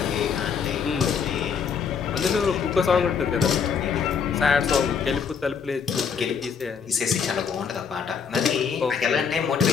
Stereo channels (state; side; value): quieter; right; 6.5 dB